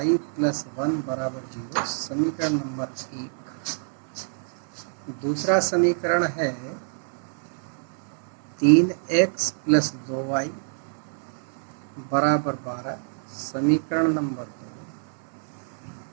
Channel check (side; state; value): left; silent; 57 dB below the other